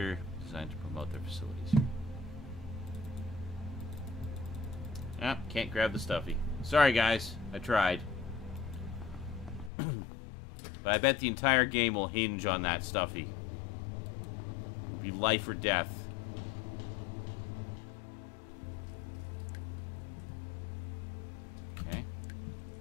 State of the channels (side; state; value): right; drops out; at 9.7 s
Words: designed to promote their facilities here. Ah, can't grab the stuffy. Sorry, guys. I tried. But I bet the entire game will hinge on that stuffy. It'll be life or death.